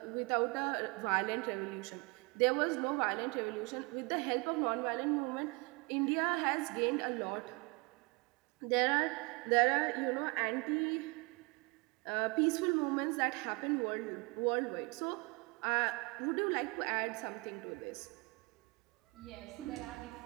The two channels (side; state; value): left; quieter; 28.2 dB